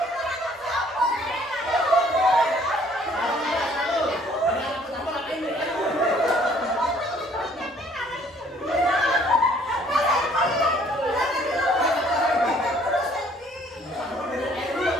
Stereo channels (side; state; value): both; normal; correlation 0.60